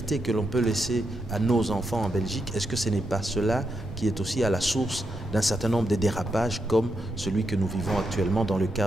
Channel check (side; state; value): both; normal; correlation 0.83